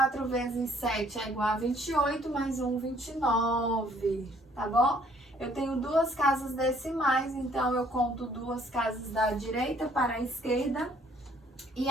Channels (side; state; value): both; normal; correlation 0.62